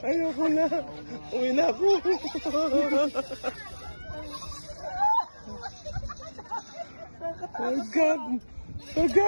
Ayoko na. Uwi na ako. Oh God! Oh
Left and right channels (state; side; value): inverted; both; correlation -1.00